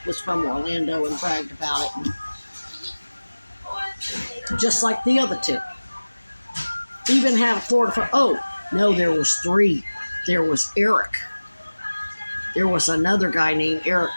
was from Orlando and bragged about it, and just like the other two. Even had a Florida, oh, no, there was 3. There was Eric. There was another guy named Eric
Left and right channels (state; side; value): inverted; both; correlation -1.00